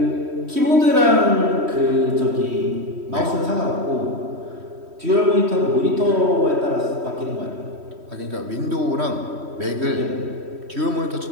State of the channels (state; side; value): late; left; 3.1 ms